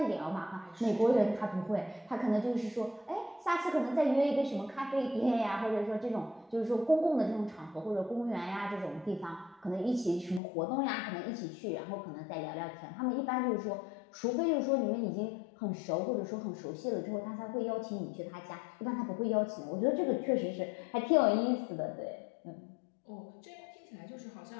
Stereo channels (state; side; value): drops out; right; at 10.4 s